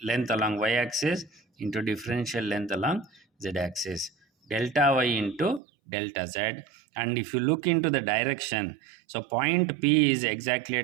length along y axis into differential length along z axis, delta y into delta z. And if you look into the direction, so point P is exactly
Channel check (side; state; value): left; drops out; at 5.6 s